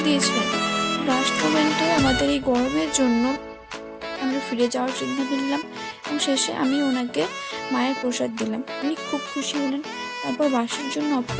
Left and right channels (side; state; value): both; identical; correlation 1.00